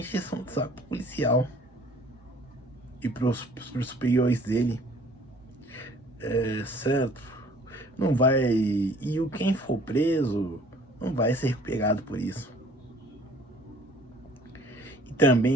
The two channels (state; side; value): normal; both; correlation 0.54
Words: de saco policial e pros superiores dele, certo? Não vai. E quem for preso não vai ser pegado por isso. E